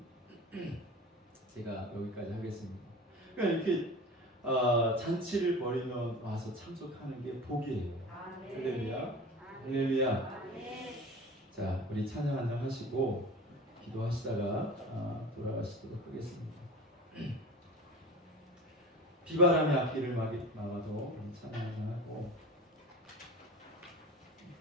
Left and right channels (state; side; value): normal; both; correlation 0.36